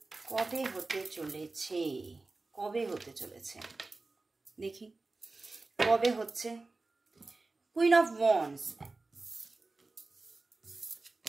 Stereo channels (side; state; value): left; quieter; 3.5 dB